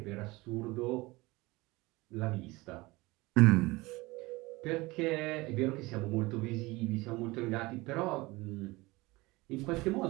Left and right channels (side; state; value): left; quieter; 22.0 dB